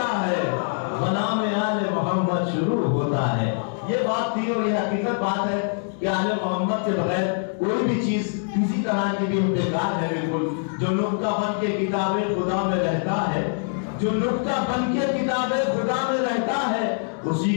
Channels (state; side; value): silent; right; 63 dB below the other